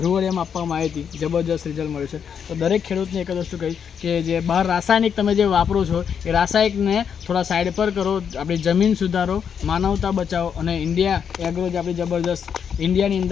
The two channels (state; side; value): quieter; right; 7.5 dB